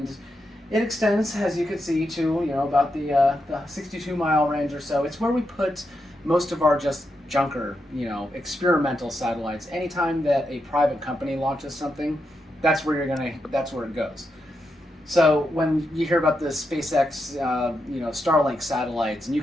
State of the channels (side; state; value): both; normal; correlation 0.84